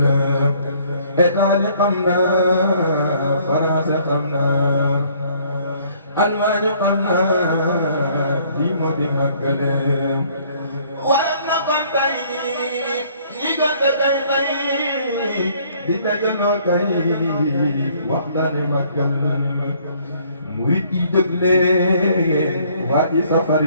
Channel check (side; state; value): both; inverted; correlation -0.61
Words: Italie xam na France xam na Allemagne xam na lii moo di màggal waral na kon tey ñi gënte kay tey di dajaloo kay waxtaane màggal murit yi jóg leen waa ji safar